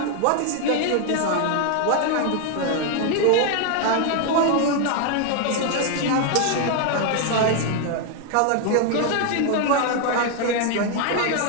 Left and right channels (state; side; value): different; both; correlation 0.01